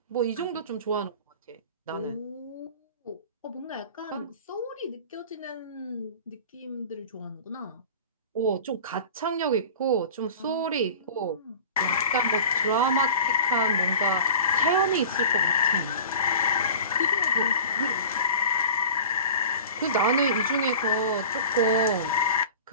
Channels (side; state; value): both; inverted; correlation -0.40